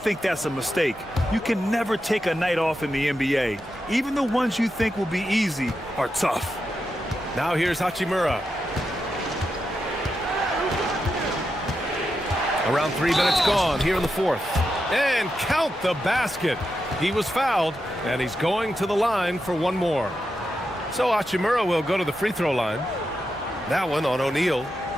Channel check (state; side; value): normal; both; correlation 0.87